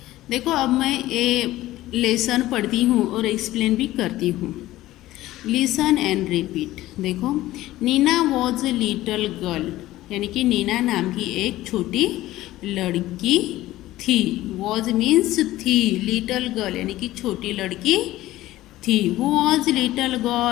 देखो, अब मैं ये लेसन पढ़ती हूँ और एक्सप्लेन भी करती हूँ। Listen and repeat. देखो, Neena was a little girl, यानी कि नीना नाम की एक छोटी लड़की थी। वॉज मीन्स थी, लिटल गर्ल यानी कि छोटी लड़की थी। Who was little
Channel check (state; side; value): quieter; right; 16.0 dB